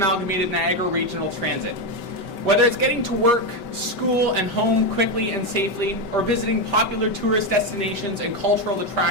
Niagara Regional Transit. Whether it's getting to work, school, and home quickly and safely, or visiting popular tourist destinations and cultural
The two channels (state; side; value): late; right; 5.2 ms